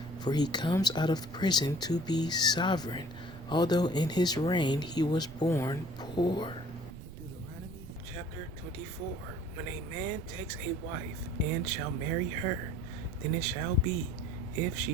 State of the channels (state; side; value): noise; right; rumble, 15 dB below the sound